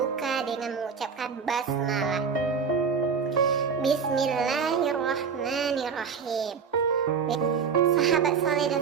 dengan mengucapkan basmalah. Bismillahirrahmanirrahim. Sahabat soleh dan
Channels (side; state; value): left; quieter; 6.0 dB